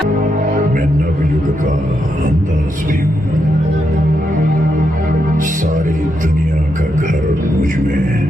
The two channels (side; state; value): both; normal; correlation 0.82